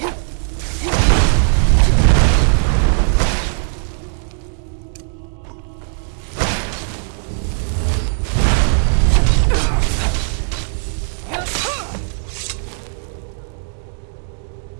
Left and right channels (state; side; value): silent; left; digital silence